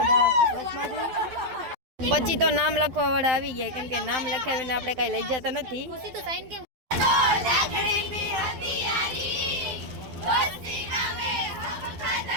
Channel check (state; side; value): late; left; 12 ms